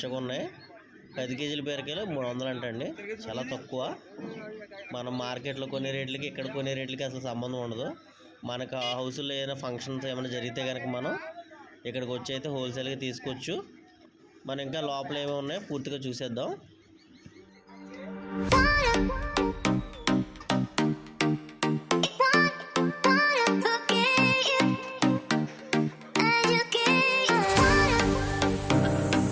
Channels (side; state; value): both; identical; correlation 1.00